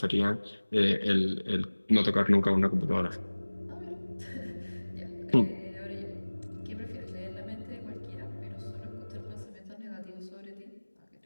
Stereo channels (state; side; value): inverted; both; correlation -1.00